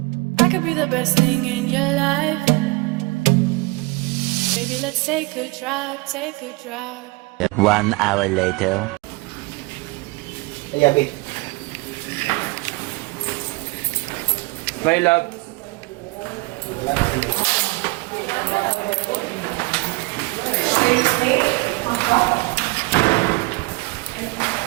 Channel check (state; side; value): quieter; left; 24.6 dB